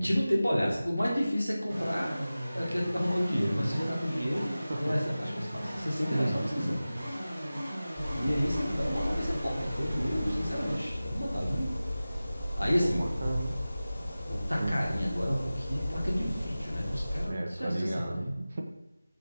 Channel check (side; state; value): both; inverted; correlation -0.96